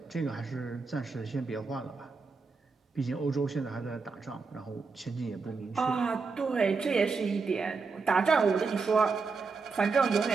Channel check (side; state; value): left; quieter; 4.6 dB